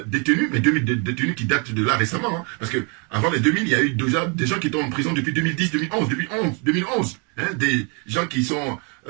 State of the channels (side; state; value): left; quieter; 34.9 dB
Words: détenus, mais 2000 détenus qui datent de là récemment. Hein, parce que avant les 2000, il y a eu déjà des gens qui étaient en prison depuis 2010, 2011. Hein, des gens qui sont,